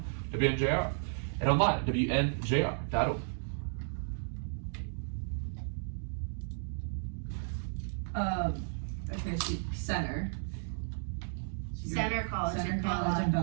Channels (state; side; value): silent; left; digital silence